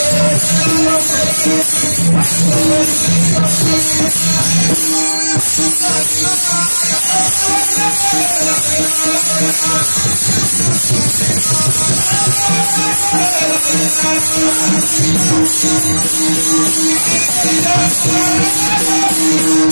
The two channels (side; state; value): both; inverted; correlation -1.00